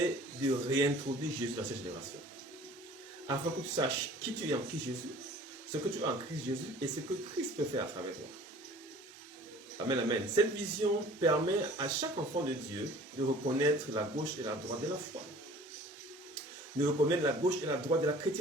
de réintroduire Jésus dans cette génération. Afin que tu saches qui tu es en Christ Jésus, ce que tu es en Christ Jésus et ce que Christ peut faire à travers toi. Amen, amen. Cette vision permet à chaque enfant de Dieu de reconnaître la gauche et la droite de la foi, de reconnaître la gauche et la droite de la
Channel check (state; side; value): normal; both; correlation 0.48